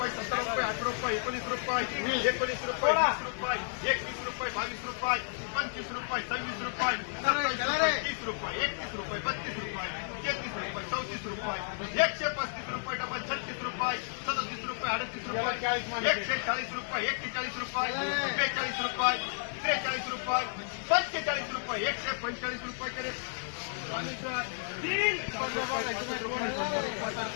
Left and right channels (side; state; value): right; silent; 56 dB below the other